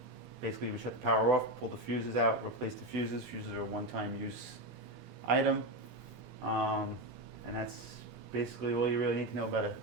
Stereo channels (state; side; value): normal; both; correlation 0.14